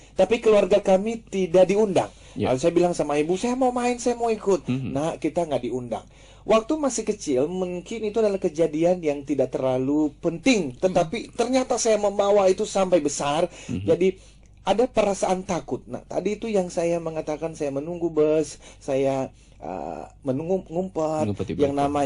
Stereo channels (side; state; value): both; identical; correlation 1.00